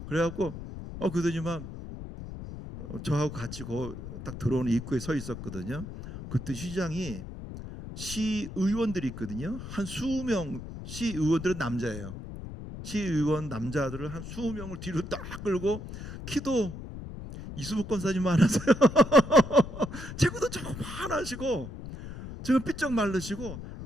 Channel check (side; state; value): left; noise; rumble, 10 dB below the sound